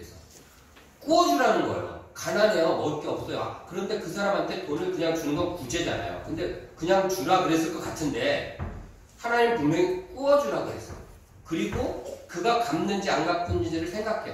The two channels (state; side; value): identical; both; correlation 1.00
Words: 구워주라는 거예요. 가난해요. 먹을 게 없어요. 그런데 그 사람한테 돈을 그냥 주는 건 구제잖아요. 근데 그냥 주라 그랬을 것 같은데 하나님 분명히 구워주라고 했어요. 그리고 그가 갚는지 안 갚는지를